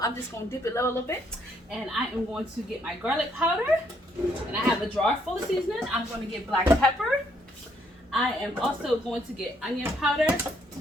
I'm just gonna dip it low a little bit. And I am going to get my garlic powder. And I have a jar full of seasoning. I'm gonna get black pepper. I am also going to get onion powder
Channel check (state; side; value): normal; both; correlation 0.71